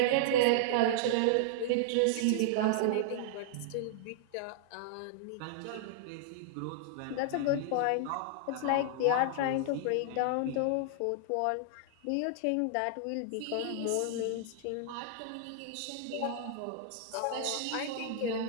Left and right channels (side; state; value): both; different; correlation -0.01